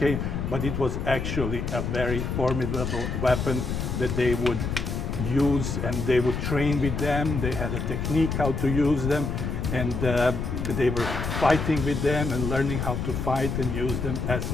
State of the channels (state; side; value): noise; left; rumble, 3 dB below the sound